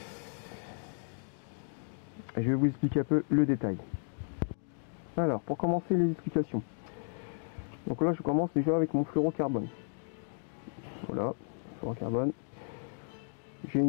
Je vais vous expliquer un peu le détail. Alors, pour commencer les explications. Donc là, je commence déjà avec mon fluorocarbone. Voilà, fluorocarbone. J'ai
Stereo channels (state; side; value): silent; right; digital silence